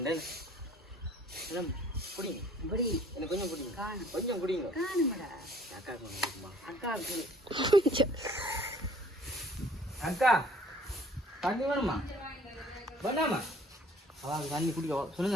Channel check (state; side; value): normal; both; correlation 0.56